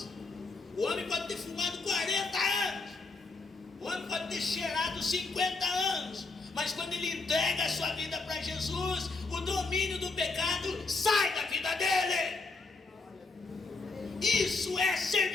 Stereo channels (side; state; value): right; quieter; 3.8 dB